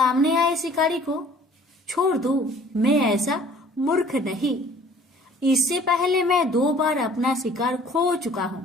आए शिकारी को छोड़ दो, मैं ऐसा मूर्ख नहीं। इससे पहले मैं 2 बार अपना शिकार खो चुका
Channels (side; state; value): both; normal; correlation 0.53